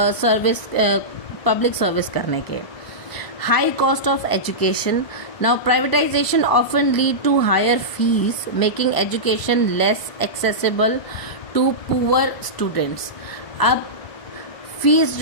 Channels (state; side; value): late; right; 1.0 ms